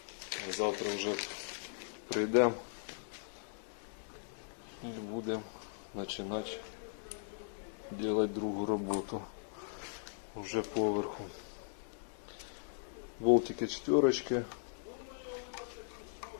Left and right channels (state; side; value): silent; right; digital silence